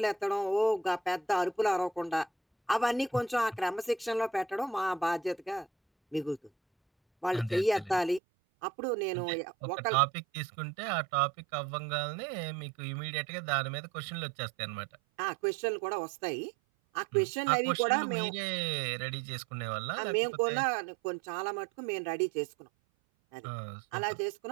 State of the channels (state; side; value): drops out; left; at 8.2 s